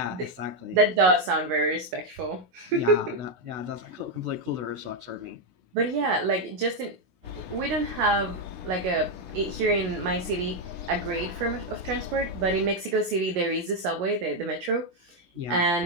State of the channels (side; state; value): left; late; 16 ms